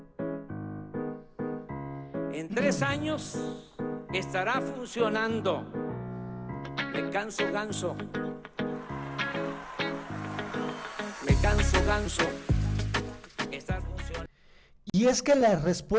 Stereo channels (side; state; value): both; identical; correlation 1.00